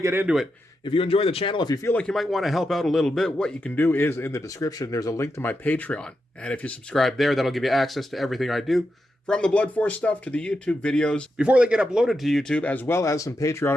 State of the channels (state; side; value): normal; both; correlation 0.87